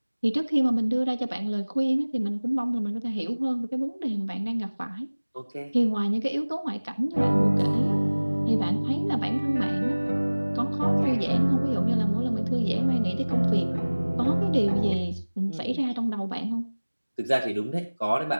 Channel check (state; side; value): inverted; both; correlation -1.00